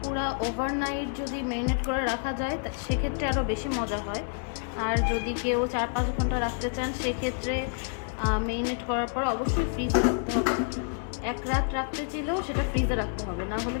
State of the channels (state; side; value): silent; right; 59 dB below the other